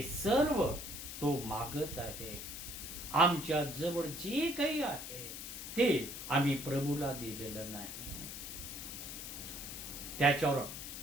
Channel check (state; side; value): noise; left; hiss, 8 dB below the sound